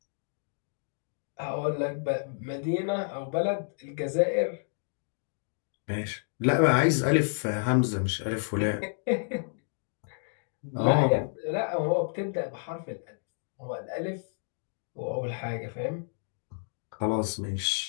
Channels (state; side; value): silent; right; digital silence